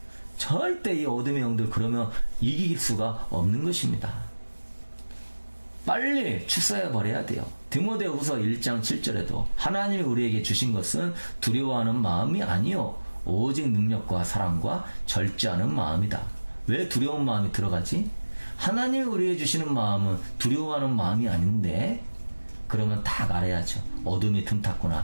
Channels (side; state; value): both; inverted; correlation -1.00